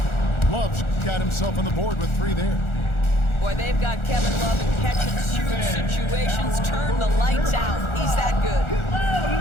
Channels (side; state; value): right; late; 1.4 ms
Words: Love's got himself on the board with 3 there. Boy, they've got Kevin Love in catch-and-shoot situations. Turn the lights out. He's that good.